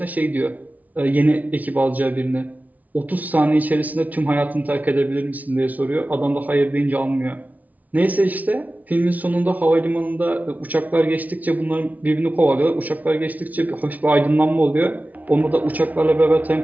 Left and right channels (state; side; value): late; left; 0.075 ms